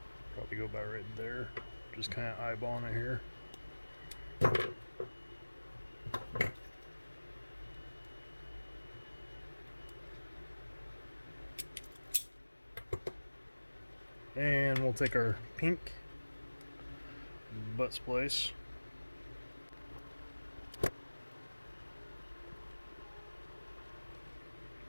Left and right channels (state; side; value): inverted; both; correlation -1.00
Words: Probably go about right there. Just kind of eyeballing it here. And we'll take our pink butt splice.